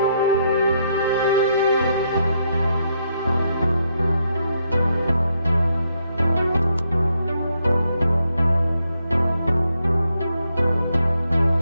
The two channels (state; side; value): inverted; both; correlation -0.77